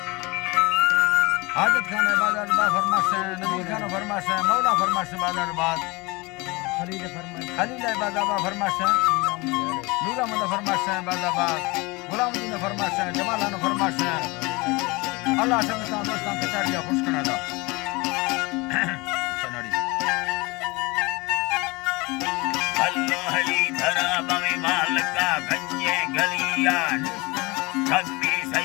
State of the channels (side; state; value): right; quieter; 25.0 dB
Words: हाजत खान बाजार बाग फरमाश नबी खान फरमाश मौला फरमाश बाजार बाग खलील बाजाबा फरमाश नूरा मंद फरमाश बाजाबाग गुलामुद्दीन फरमाश जमालान फरमाश अल्लाह समझता दोस्तान के चारिया खुश करना था सनाड़ी अल्लाह हली धरा बमे मालका गंजे गलिया कभी